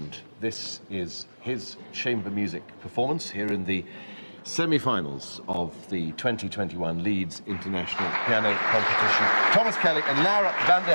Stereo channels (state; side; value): inverted; both; correlation -1.00